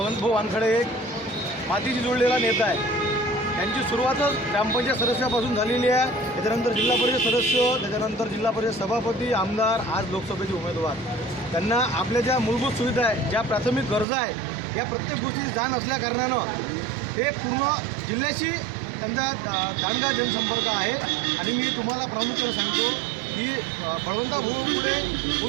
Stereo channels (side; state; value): left; drops out; at 14.1 s